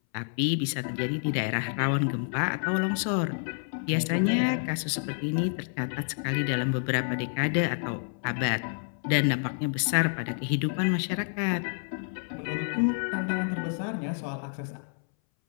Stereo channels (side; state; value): right; silent; 59 dB below the other